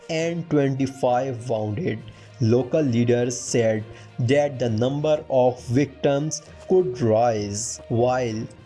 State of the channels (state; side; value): identical; both; correlation 1.00